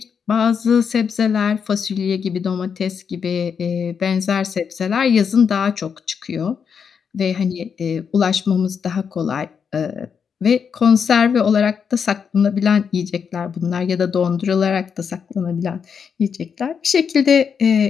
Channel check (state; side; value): quieter; right; 6.7 dB